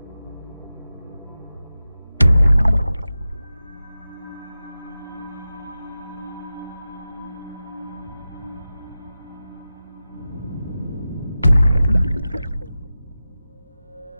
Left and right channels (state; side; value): inverted; both; correlation -0.93